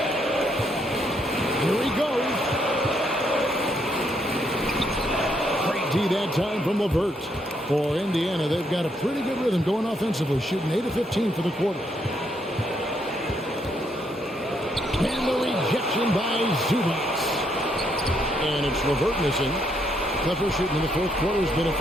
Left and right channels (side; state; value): both; normal; correlation 0.74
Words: Here he goes. Great D that time from LeVert. For Indiana, they've got a pretty good rhythm going offensively, shooting 8 of 15 for the quarter. And the rejection by Zubac. And it's LeVert missing. Clippers shooting in the fourth quarter has been